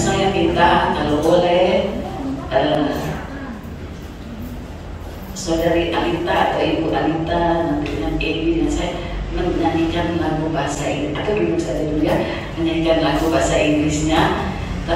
minta kalau boleh saudari Alita atau Ibu Alita nanti dengan Edi dan saya menyanyikan lagu bahasa Inggris, atau dulu saya dulu ya, menyanyikan lagu bahasa Inggrisnya,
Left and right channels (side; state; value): both; identical; correlation 1.00